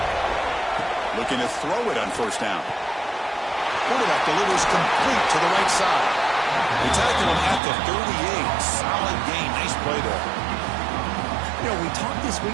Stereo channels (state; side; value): drops out; left; at 7.6 s